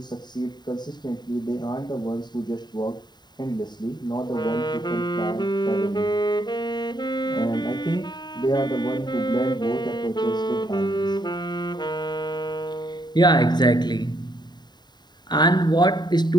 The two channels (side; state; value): right; late; 0.21 ms